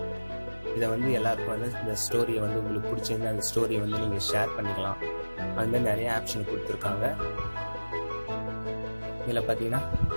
இதை வந்து எல்லாருக்கும் வந்து இந்த ஸ்டோரியை வந்து உங்களுக்கு பிடிச்சிருந்தா அந்த ஸ்டோரியை வந்து நீங்கள் ஷேர் பண்ணிக்கலாம். அதுமாதிரி நிறைய ஆப்ஷன் கொடுத்துருக்காங்க. இதில் பார்த்தீங்கன்னா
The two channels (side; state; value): both; inverted; correlation -1.00